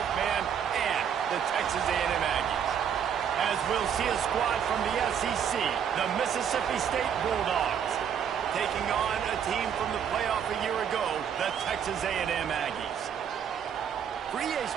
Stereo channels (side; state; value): left; quieter; 8.2 dB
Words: man and the Texas A&M Aggies. As we'll see a squad from the SEC, the Mississippi State Bulldogs, taking on a team from the playoff a year ago, the Texas A&M Aggies. For EA